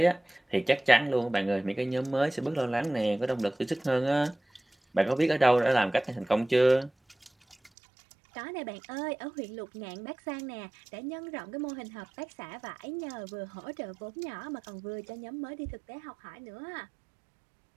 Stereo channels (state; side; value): drops out; left; at 7.7 s